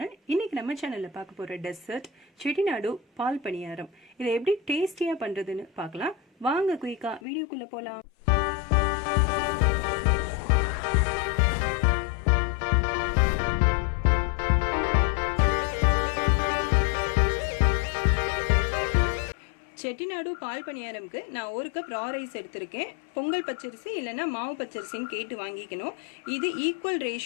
இன்னைக்கு நம்ம சேனல்ல பார்க்க போற டெசர்ட் செட்டிநாடு பால் பணியாரம். இதை எப்படி டேஸ்டியா பண்றதுன்னு பார்க்கலாம். வாங்க குயிக்கா வீடியோக்குள்ள போலாம். செட்டிநாடு பால் பணியாரம்க்கு நான் 1 கப் ரா ரைஸ் எடுத்திருக்கேன். பொங்கல் பச்சரிசி இல்லைன்னா மாவு பச்சரிசின்னு கேட்டு வாங்கிக்கணும். இது ஈக்குவல்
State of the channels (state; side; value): drops out; right; at 7.2 s